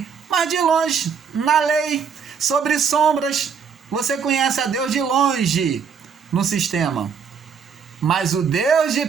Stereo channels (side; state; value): left; quieter; 6.5 dB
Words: mas de longe, na lei, sobre sombras, você conhece a Deus de longe no sistema, mas o Deus de